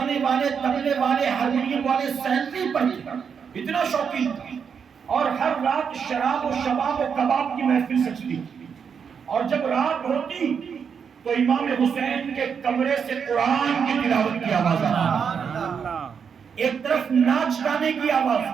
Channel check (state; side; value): quieter; left; 6.7 dB